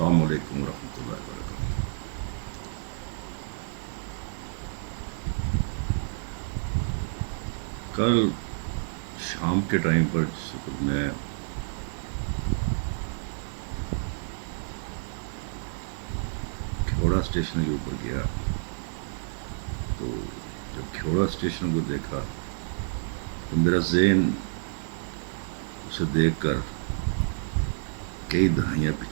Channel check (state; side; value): silent; left; 58 dB below the other